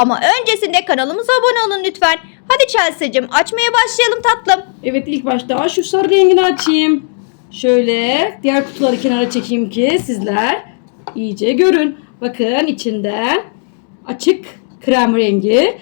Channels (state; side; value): silent; right; 56 dB below the other